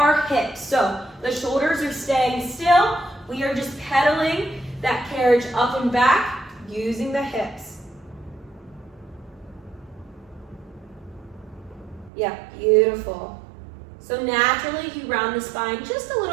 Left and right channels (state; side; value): drops out; left; at 12.1 s